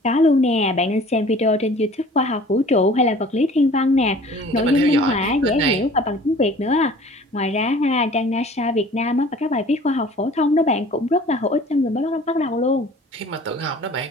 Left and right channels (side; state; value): both; normal; correlation 0.48